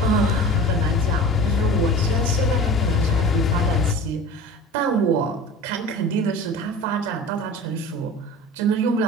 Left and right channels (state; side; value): normal; both; correlation 0.37